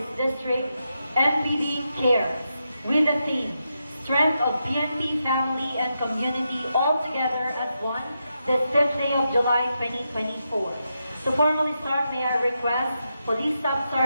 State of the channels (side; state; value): both; inverted; correlation -0.86